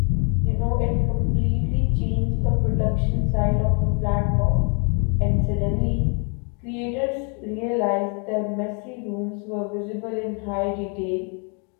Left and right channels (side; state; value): right; quieter; 38.5 dB